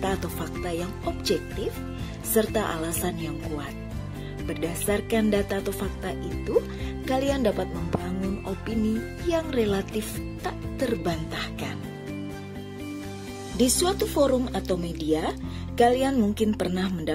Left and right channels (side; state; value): both; identical; correlation 1.00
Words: atau fakta yang objektif serta alasan yang kuat. Berdasarkan data atau fakta itu, kalian dapat membangun opini yang relatif tak terbantahkan. Di suatu forum atau media, kalian mungkin pernah